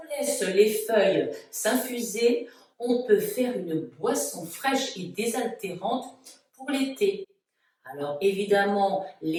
laisse les feuilles s'infuser, on peut faire une boisson fraîche et désaltérante pour l'été. Alors évidemment,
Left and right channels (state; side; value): identical; both; correlation 1.00